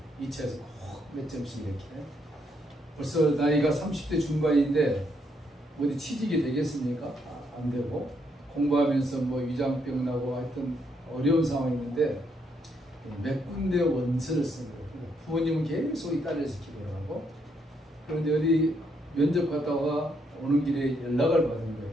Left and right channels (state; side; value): normal; both; correlation 0.75